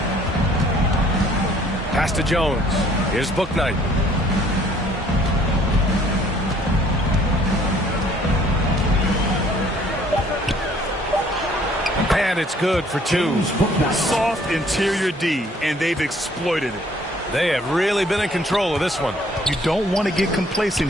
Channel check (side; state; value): both; normal; correlation 0.59